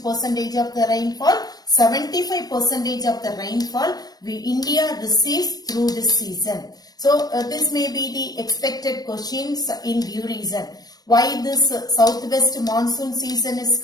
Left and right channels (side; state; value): right; late; 0.19 ms